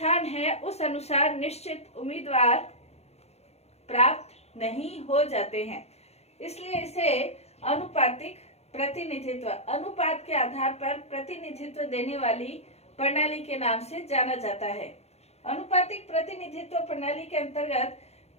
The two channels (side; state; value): right; late; 0.31 ms